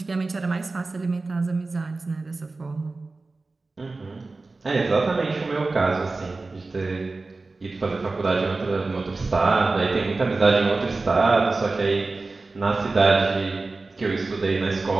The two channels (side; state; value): left; quieter; 3.6 dB